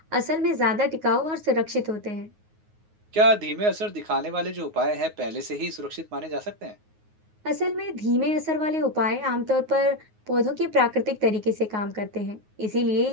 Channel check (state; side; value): late; left; 9.5 ms